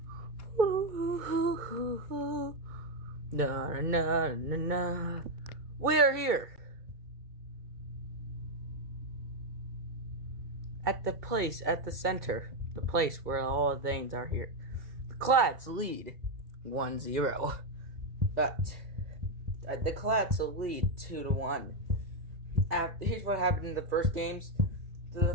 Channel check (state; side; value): late; left; 2.2 ms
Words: here at the place at the center, the place where all the things are here. The Clads lead 1-0, but the Clads will lead 2-1. Here's what happened in the first games.